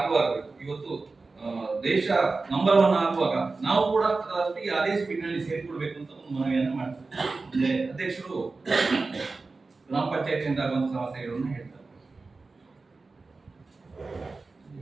ಇವತ್ತು ದೇಶ ನಂಬರ್ 1 ಆಗುವಾಗ ನಾವು ಕೂಡ ಅದರೊಟ್ಟಿಗೆ ಅದೇ ಸ್ಪೀಡ್ ನಲ್ಲಿ ಸೇರಿಕೊಳ್ಬೇಕು ಅಂತ ಒಂದು ಮನವಿಯನ್ನು ಮಾಡ್ತಾರೆ. ಅಧ್ಯಕ್ಷರು ಗ್ರಾಮ ಪಂಚಾಯತಿಯಿಂದ ಆಗುವಂತ ಸಮಸ್ಯೆಗಳನ್ನು ಹೇಳ್ತಾರೆ.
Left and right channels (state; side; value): quieter; left; 3.8 dB